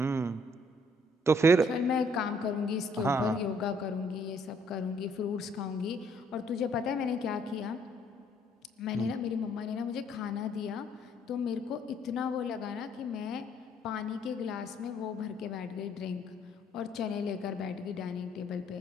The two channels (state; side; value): normal; both; correlation 0.65